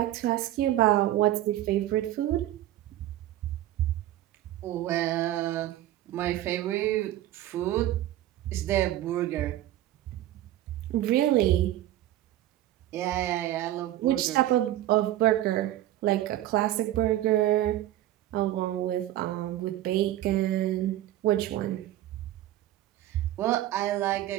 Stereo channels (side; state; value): left; quieter; 13.9 dB